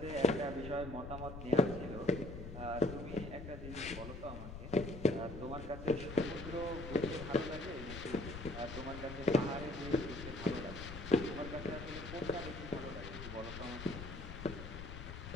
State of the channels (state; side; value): noise; left; rumble, 9 dB below the sound